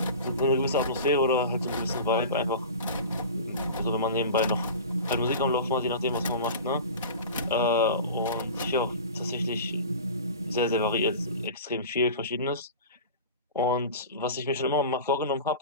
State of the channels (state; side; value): inverted; both; correlation -0.35